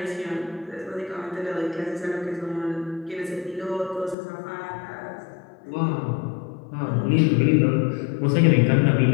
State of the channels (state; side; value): drops out; right; at 4.2 s